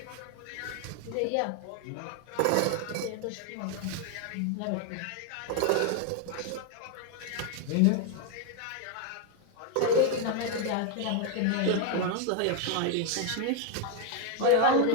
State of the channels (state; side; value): different; both; correlation 0.01